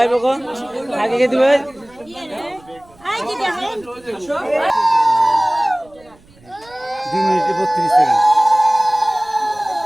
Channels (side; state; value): right; noise; rumble, 28 dB below the sound